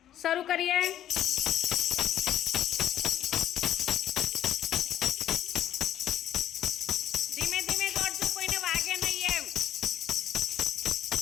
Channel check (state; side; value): quieter; right; 11.5 dB